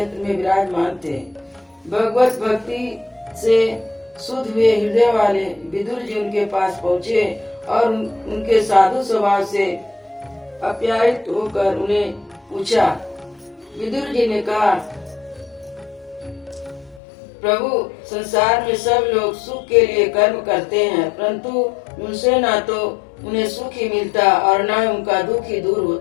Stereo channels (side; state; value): right; drops out; at 17.0 s